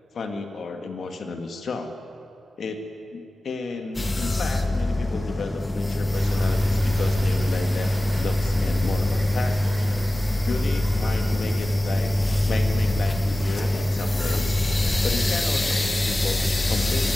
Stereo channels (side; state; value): both; normal; correlation 0.96